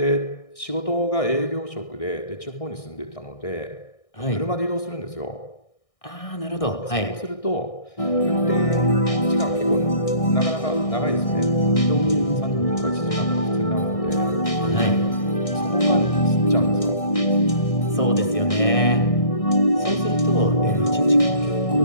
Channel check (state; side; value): late; right; 1.6 ms